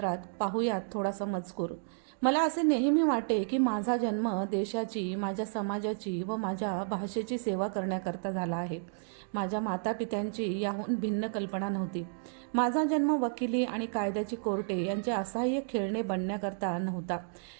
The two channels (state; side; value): silent; left; digital silence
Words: पाहूयात थोडासा मजकूर. मला असे नेहमी वाटे की माझा जन्म देशाची, माझ्या समाजाची व माझ्या भाषेची सेवा करण्याकरता झाला आहे. माझ्या मातापित्यांची याहून भिन्न कल्पना नव्हती. माझा जन्म वकिली आणि कायद्याची कोर्टे यांचे असहाय्य खेळणे बनण्याकरता नव्हता.